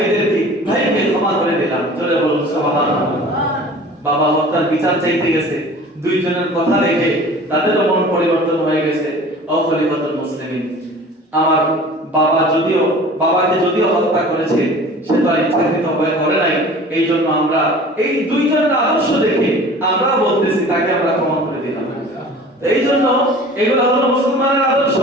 ক্ষমা করে দিলাম। জোরে বলুন সুবহানাল্লাহ। বাবা হত্যার বিচার চাইতে গেছে, দুইজনের কথা দেখে তাদেরও মন পরিবর্তন হয়ে গেছে। ও খলিফাতুল মুসলিমিন, আমার বাবাকে যদিও হত্যা করেছে, সে তো আর ইচ্ছাকৃত ভাবে করে নাই, এই জন্য আমরা এই দুইজনের আদর্শ দেখে আমরা বলতেছি তাকে আমরা ক্ষমা করে দিলাম। এই জন্য এগুলো হলো মুসলমানের আদর্শ।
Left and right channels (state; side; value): normal; both; correlation 0.43